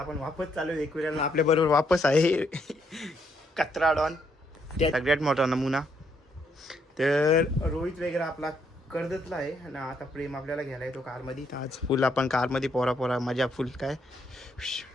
वापस चालू एक वेळेला आपल्या बरोबर वापस आहे कचरा डॉन, सगळ्यात मोठा नमुना. तर रोहित वगैरे आपला कर्जतला आहे आणि आता प्रेम आपल्याला घ्यायला येतो कारमध्ये. आज फुल आपण कारमध्ये पोरा मजा फुल. काय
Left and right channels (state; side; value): normal; both; correlation 0.73